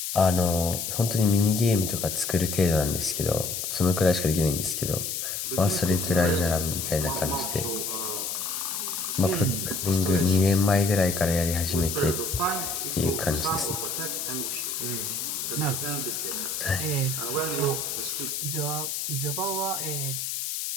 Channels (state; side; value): noise; left; hiss, 3 dB below the sound